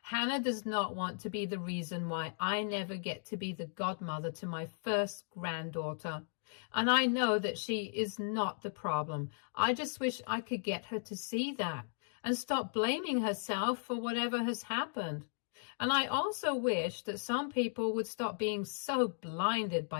Hannah does not want to be the reason why I never get to be the godmother to my first granddaughter. And I know that she is not the problem. I just wish I could get her to see that and stop blaming herself for whatever has happened. And I also wish that some people would stop being so blinded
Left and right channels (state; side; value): silent; right; digital silence